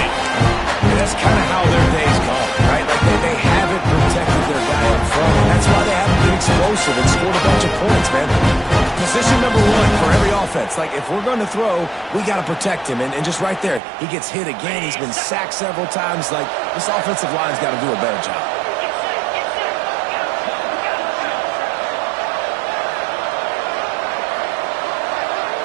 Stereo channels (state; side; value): drops out; left; at 13.8 s